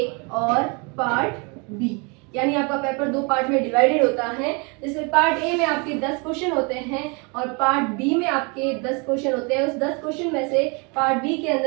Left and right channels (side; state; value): left; quieter; 31.8 dB